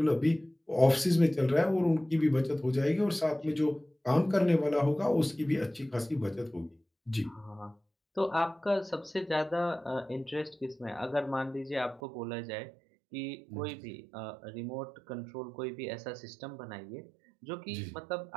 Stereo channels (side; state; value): left; drops out; at 12.0 s